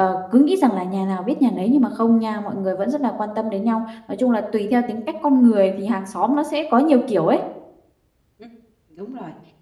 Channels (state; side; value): identical; both; correlation 1.00